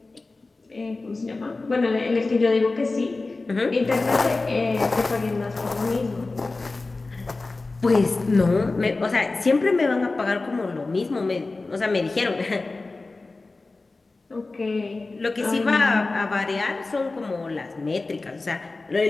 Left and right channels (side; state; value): right; quieter; 3.5 dB